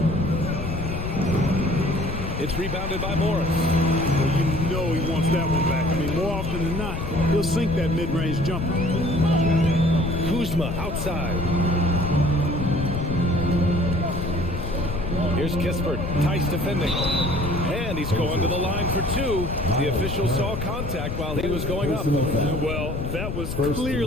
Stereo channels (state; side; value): noise; left; rumble, 4 dB below the sound